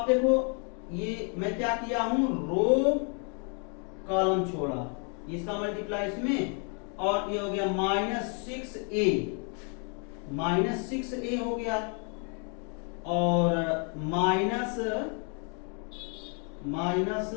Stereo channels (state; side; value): quieter; right; 39.5 dB